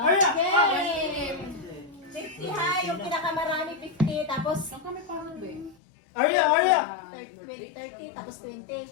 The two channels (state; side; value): drops out; right; at 5.8 s